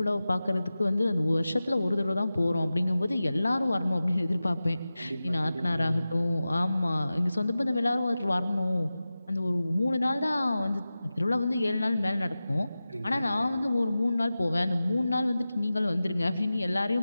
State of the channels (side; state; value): both; inverted; correlation -0.95